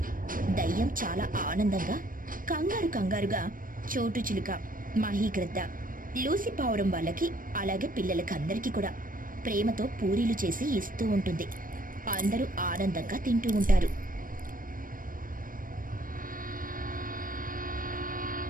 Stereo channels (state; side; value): late; left; 0.40 ms